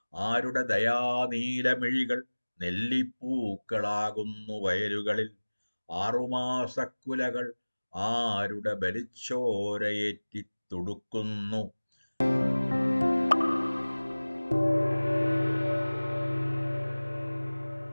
ആരുടെ ദയാനീലമിഴികൾ നെല്ലിപ്പൂക്കളാകുന്നു വയലുകളിൽ, ആറുമാസക്കുലകൾ ആരുടെ ബലിച്ചോരയേറ്റി തുടുക്കുന്നു.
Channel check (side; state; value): both; inverted; correlation -1.00